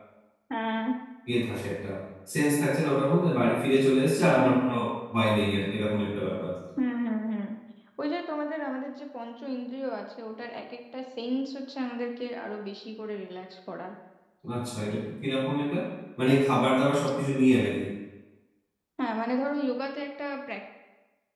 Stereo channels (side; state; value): both; identical; correlation 1.00